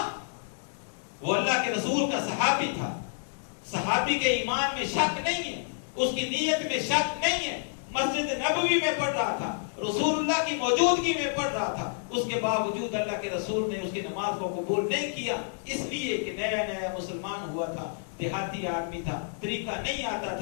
وہ اللہ کے رسول کا صحابی تھا, صحابی کے ایمان میں شک نہیں ہے, اس کی نیت میں شک نہیں ہے. مسجد نبوی میں پڑھ رہا تھا, رسول اللہ کی موجودگی میں پڑھ رہا تھا, اس کے باوجود اللہ کے رسول نے اس کی نماز کو قبول نہیں کیا, اس لیے کہ نیا نیا مسلمان ہوا تھا, دیہاتی آدمی تھا, طریقہ نہیں آتا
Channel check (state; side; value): silent; right; digital silence